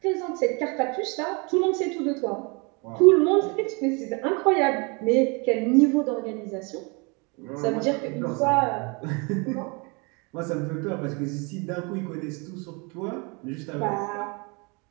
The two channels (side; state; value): left; quieter; 30.7 dB